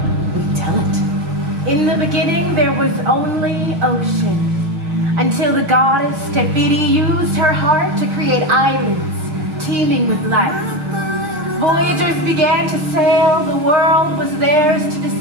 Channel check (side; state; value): left; late; 6.5 ms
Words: we tell it. In the beginning, there was only ocean, until the goddess Tefiti used her heart to create islands teeming with life. Voyagers began to sail, the world was theirs to